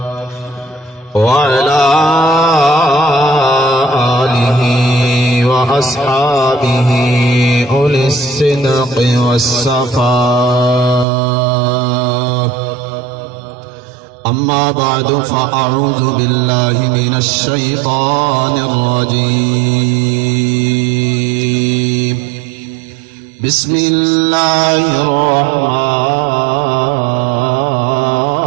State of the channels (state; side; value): drops out; left; at 11.1 s